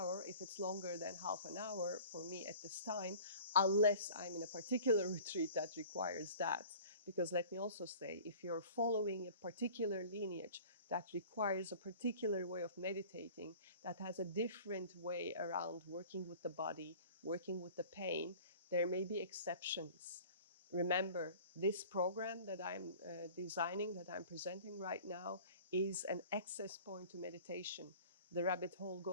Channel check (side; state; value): both; inverted; correlation -0.45